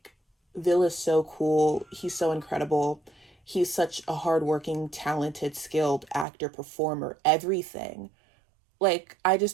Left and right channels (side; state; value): left; drops out; at 6.2 s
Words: Vil is so cool, he's so incredible, he's such a hardworking, talented, skilled actor, performer, everything. Like, I